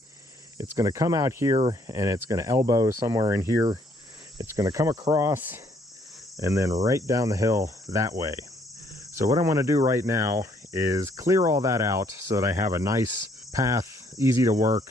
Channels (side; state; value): both; normal; correlation 0.66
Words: It's going to come out here and it's going to elbow somewhere in here. It's going to come across and then right down the hill that way. So what I want to do right now is clear all that out so that I have a nice path, easy to work,